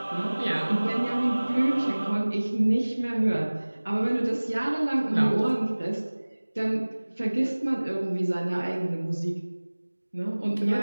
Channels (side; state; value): both; inverted; correlation -1.00